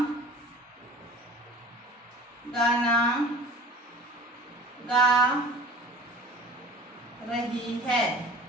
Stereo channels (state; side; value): normal; both; correlation 0.43